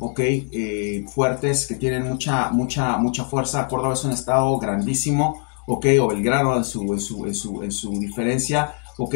ok, fuertes, que tienen mucha fuerza. Córdoba es un estado grandísimo, ok, o Belgrano en su diferencia, ok,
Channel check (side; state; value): right; quieter; 39.9 dB